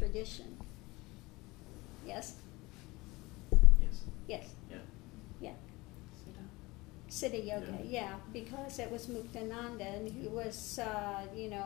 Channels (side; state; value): right; quieter; 22.4 dB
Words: Yes? Yes. Yes. Yeah. Yeah. Siddha. Siddha Yoga, Yeah. yeah, because it was Muktananda, and he was,